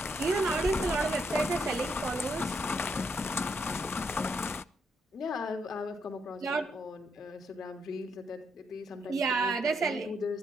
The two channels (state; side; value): normal; both; correlation 0.77